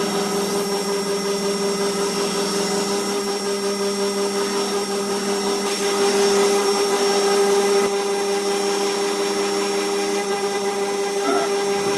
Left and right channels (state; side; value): identical; both; correlation 1.00